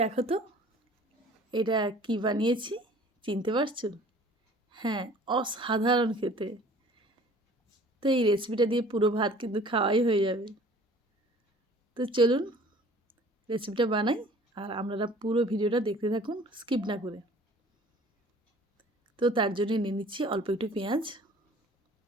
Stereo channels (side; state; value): both; normal; correlation 0.50